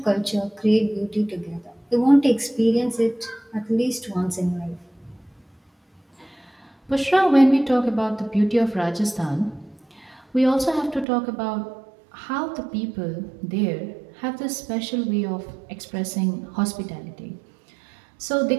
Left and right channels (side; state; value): left; drops out; at 11.1 s